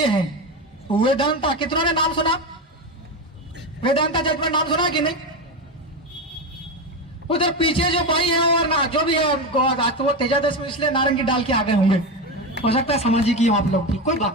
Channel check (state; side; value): normal; both; correlation 0.17